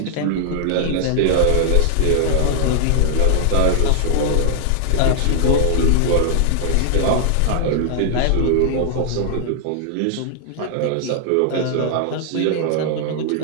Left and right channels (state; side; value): different; both; correlation -0.01